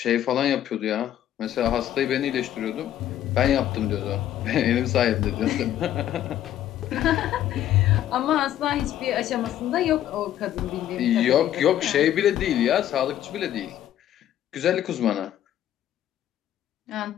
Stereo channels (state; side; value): quieter; right; 11.7 dB